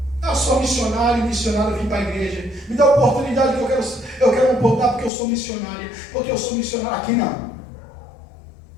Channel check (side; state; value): right; drops out; at 5.1 s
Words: Eu sou missionário, vim para a igreja. Me dá a oportunidade que eu quero um pouco, porque eu sou missionária. Porque eu sou missionário. Aqui não.